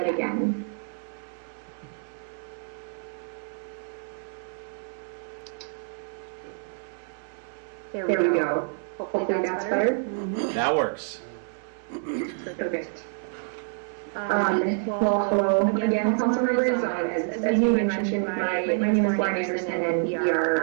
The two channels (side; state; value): left; silent; 60 dB below the other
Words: There we go. Hopefully that's better. That works. Perfect. Well, again, council members, as you mentioned, my name is Lauren Anderson, and we